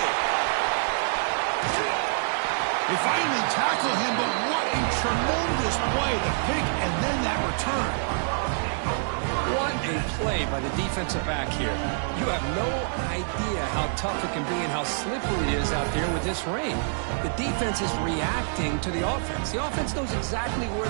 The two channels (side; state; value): left; silent; digital silence